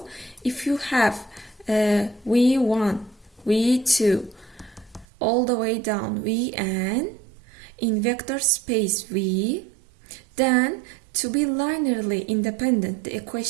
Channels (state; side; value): drops out; left; at 5.1 s